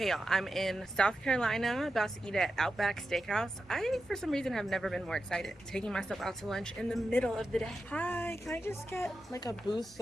y'all, I'm in South Carolina, about to eat at Outback Steakhouse. I, for some reason, have never been more excited. Taking myself out to lunch in the middle of the day. Hi, can I just get like a booth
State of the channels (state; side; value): normal; both; correlation 0.90